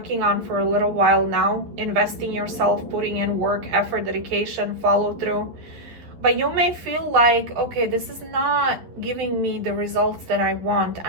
on for a little while now, investing yourself, putting in work, effort, dedication, follow through. But you may feel like, okay, this is not giving me the results that I want.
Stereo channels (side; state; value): left; late; 11 ms